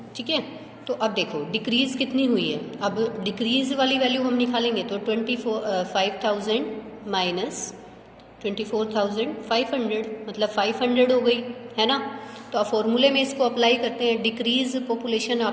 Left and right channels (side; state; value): both; identical; correlation 1.00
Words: ठीक है, तो अब देखो डिक्रीज कितनी हुई है। अब डिक्रीज वाली वैल्यू हम निकालेंगे तो 25,000 माइनस 24,500 मतलब 500 हो गई है ना। तो आप फॉर्मूले में इसको अप्लाई करते हैं। डिक्रीज पॉपुलेशन